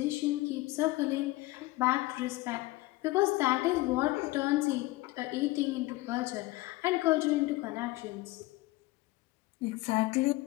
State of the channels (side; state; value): right; quieter; 19.9 dB